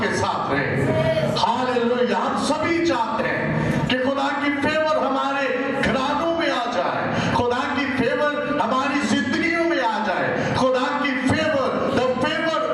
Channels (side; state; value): both; identical; correlation 1.00